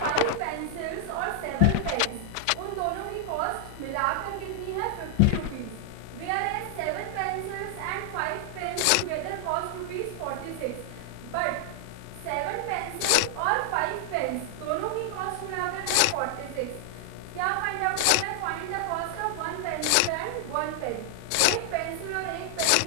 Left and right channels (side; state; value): both; different; correlation 0.00